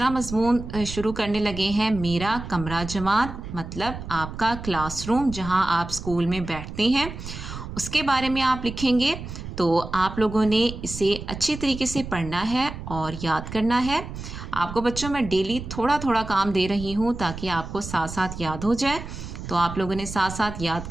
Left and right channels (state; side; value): noise; right; rumble, 10 dB below the sound